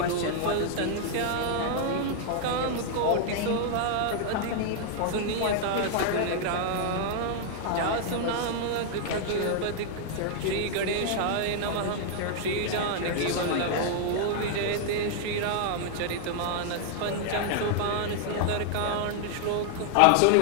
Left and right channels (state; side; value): different; both; correlation -0.01